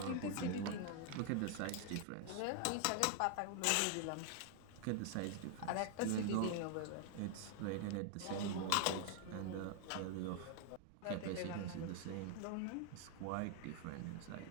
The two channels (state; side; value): different; both; correlation 0.00